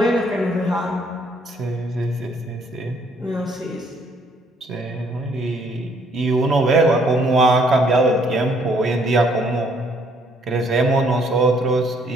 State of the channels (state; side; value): normal; both; correlation 0.65